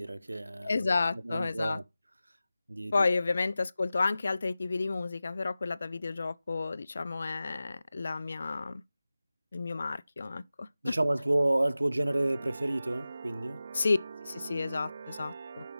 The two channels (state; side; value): inverted; both; correlation -0.95